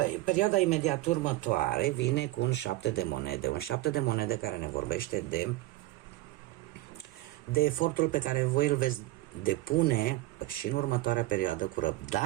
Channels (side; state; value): left; quieter; 17.6 dB